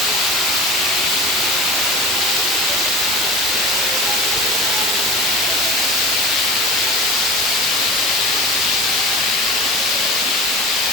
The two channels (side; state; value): both; normal; correlation 0.33